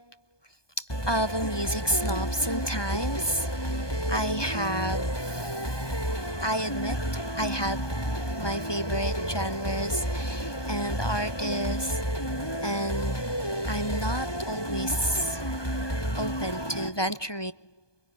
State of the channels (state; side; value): late; right; 1.2 ms